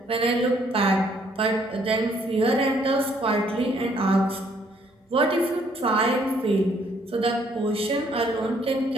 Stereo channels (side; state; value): both; normal; correlation 0.66